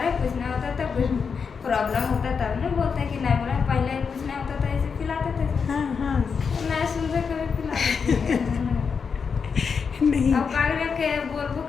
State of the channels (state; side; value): quieter; right; 5.9 dB